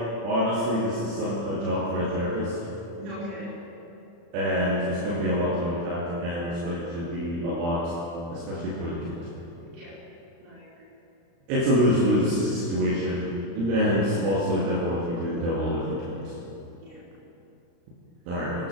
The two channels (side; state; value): left; late; 35 ms